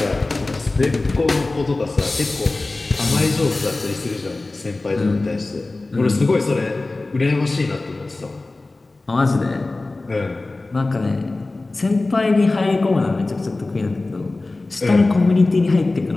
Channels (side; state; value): right; quieter; 3.2 dB